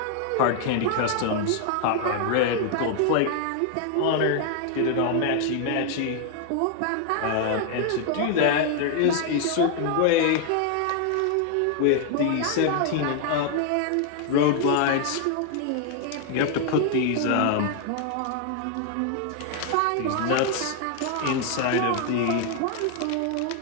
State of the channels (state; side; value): different; both; correlation 0.00